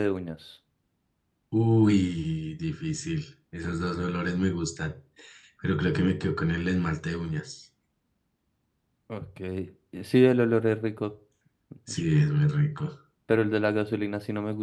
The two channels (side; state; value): both; identical; correlation 1.00